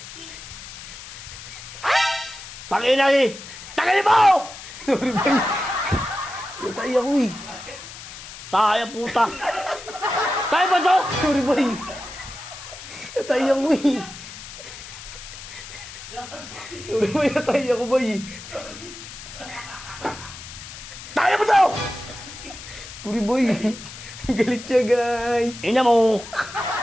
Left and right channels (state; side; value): noise; left; hiss, 13 dB below the sound